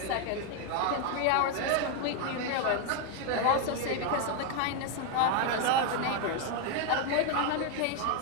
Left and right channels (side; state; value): both; different; correlation 0.01